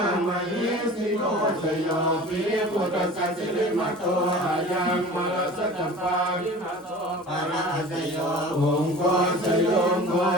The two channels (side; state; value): both; normal; correlation 0.40